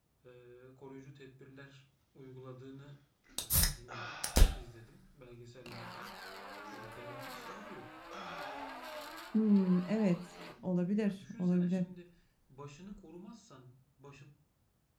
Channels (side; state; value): both; identical; correlation 1.00